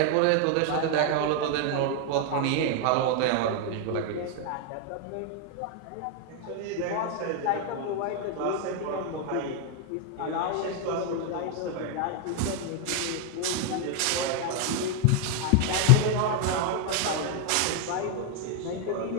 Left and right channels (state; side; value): different; both; correlation 0.00